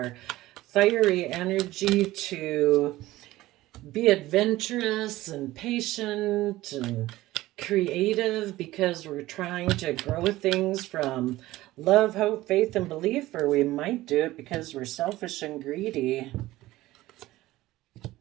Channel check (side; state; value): left; quieter; 17.0 dB